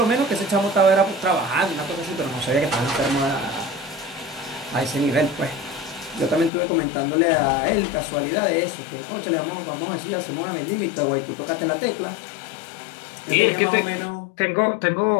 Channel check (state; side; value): drops out; right; at 6.5 s